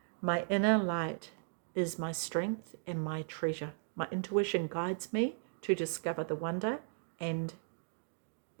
My inner light is my strength and my treasure. My intuition guides me to discover the wonder and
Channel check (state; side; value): silent; left; digital silence